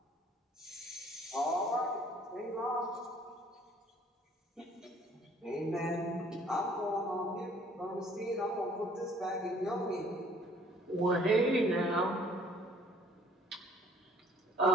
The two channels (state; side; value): normal; both; correlation 0.57